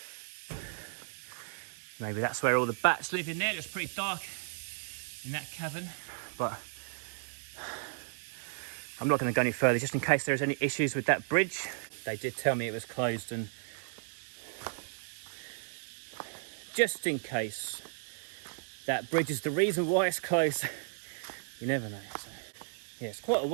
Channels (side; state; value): left; silent; 55 dB below the other